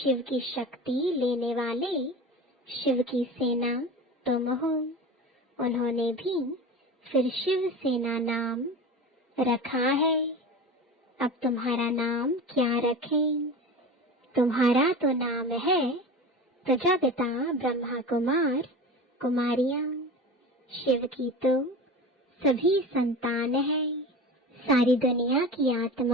की शक्ति लेने वाले शिव की सेना तुम हो। उन्होंने भी फिर शिव सेना नाम रखा है। अब तुम्हारा नाम क्या रखें? तुम्हारा तो नाम है प्रजापिता ब्रह्मा कुमार कुमारियां। शिव की तो सभी संतान है। सारी दुनिया की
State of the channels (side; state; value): both; normal; correlation 0.31